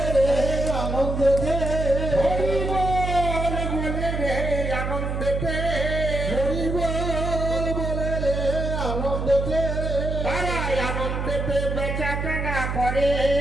রে আনন্দেতে, হরি বল বলে রে আনন্দেতে, হরি বল বলে রে আনন্দেতে, তারাই আনন্দেতে বেচা কেনা করে,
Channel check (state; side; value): noise; right; hum, 2 dB below the sound